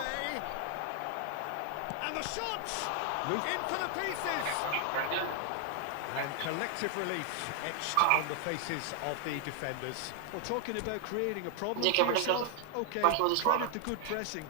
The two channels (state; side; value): different; both; correlation 0.00